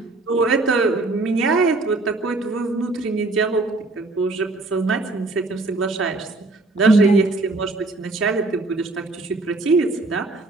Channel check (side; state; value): left; quieter; 3.2 dB